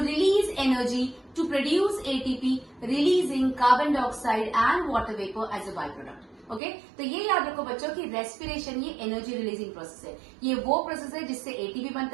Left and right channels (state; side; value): drops out; left; at 6.6 s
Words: release energy to produce ATP, releasing carbon dioxide and water vapor as a byproduct. Okay तो ये याद रखो बच्चों कि respiration ये energy releasing process है। ये वो प्रोसेस है जिससे एटीपी